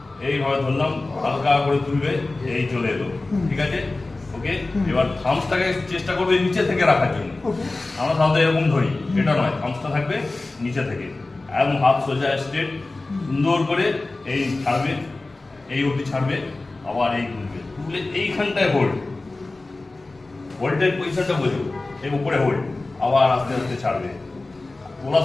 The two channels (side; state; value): right; quieter; 3.2 dB